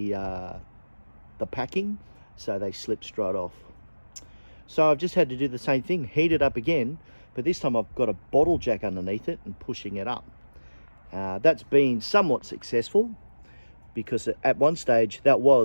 packing, so they slipped straight off. So I've just had to do the same thing, heat it up again, but this time I've got a bottle jack underneath it and pushing it up. That's been somewhat successful, because at one stage that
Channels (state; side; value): inverted; both; correlation -1.00